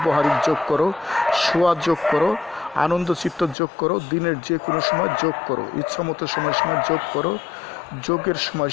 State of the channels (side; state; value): right; drops out; at 3.6 s